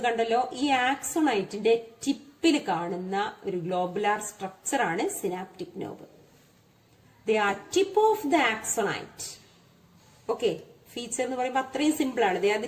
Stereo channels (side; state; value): both; identical; correlation 1.00